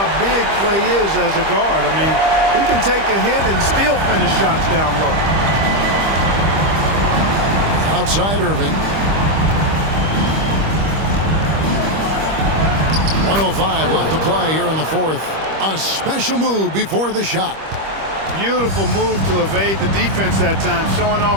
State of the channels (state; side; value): late; left; 25 ms